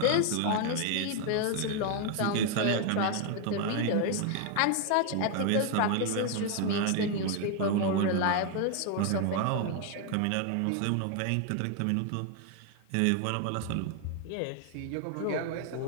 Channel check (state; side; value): different; both; correlation 0.01